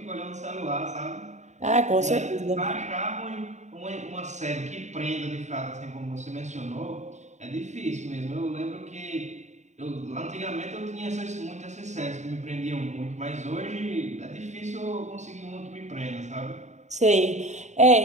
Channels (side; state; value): left; late; 0.34 ms